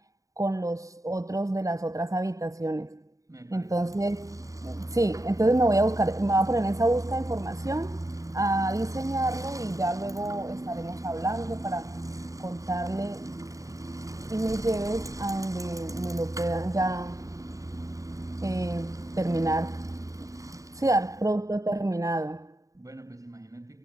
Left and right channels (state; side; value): late; left; 0.16 ms